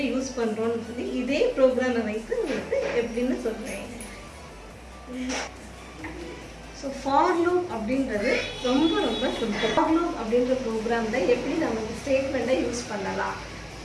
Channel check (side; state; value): both; identical; correlation 1.00